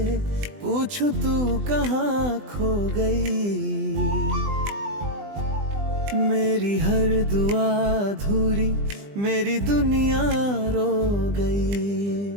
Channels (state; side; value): late; left; 20 ms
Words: पूछूं तू कहाँ खो गई, मेरी हर दुआ अधूरी मेरी दुनिया रो